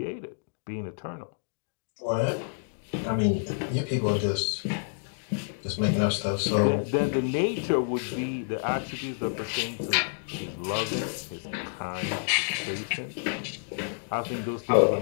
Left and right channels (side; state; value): right; silent; digital silence